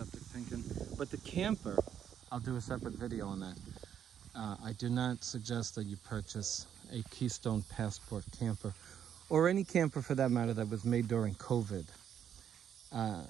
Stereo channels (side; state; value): left; quieter; 9.1 dB